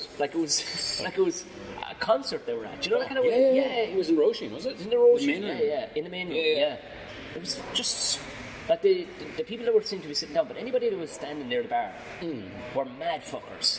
Like it was a concert they were at. Do you know that kind of way? way? Yeah. It was in Roisin, was it? In the Roisin. In the main room. Yeah. It was just like the people that were seemed to be sitting down, but anybody that was standing near the bar were mad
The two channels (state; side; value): identical; both; correlation 1.00